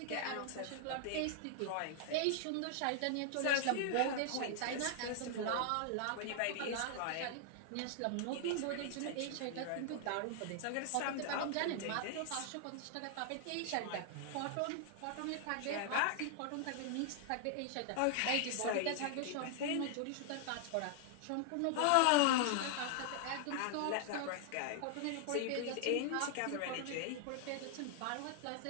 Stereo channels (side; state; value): both; different; correlation 0.00